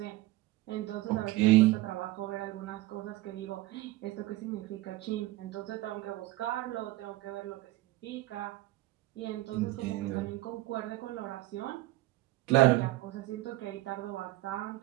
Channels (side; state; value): left; quieter; 17.9 dB